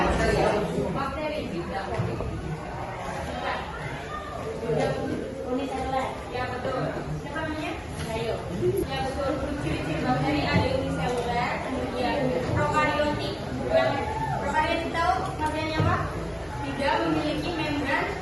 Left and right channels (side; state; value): both; identical; correlation 1.00